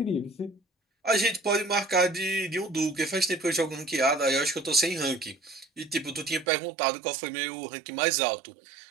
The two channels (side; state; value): left; drops out; at 6.5 s